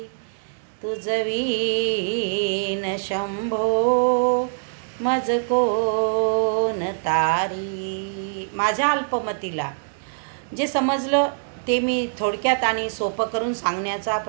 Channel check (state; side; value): silent; left; digital silence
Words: तुझवीन शंभो मज कोण तारी. माझ्या अल्पमतीला जे समजलं ते मी थोडक्यात आणि सोपं करून सांगण्याचा